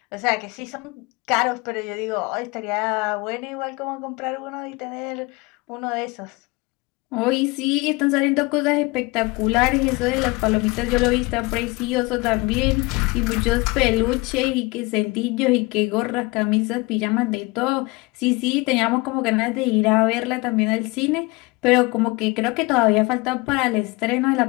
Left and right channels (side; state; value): right; quieter; 24.5 dB